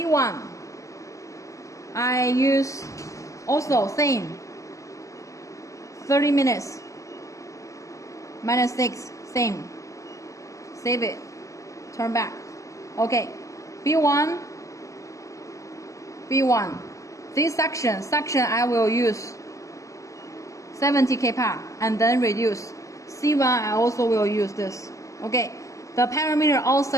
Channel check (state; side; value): late; right; 0.16 ms